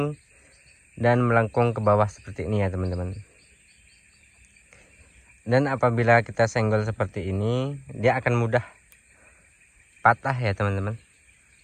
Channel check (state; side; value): identical; both; correlation 1.00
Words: dan melengkung ke bawah seperti ini ya teman-teman. Dan apabila kita senggol seperti ini, dia akan mudah patah ya teman-teman,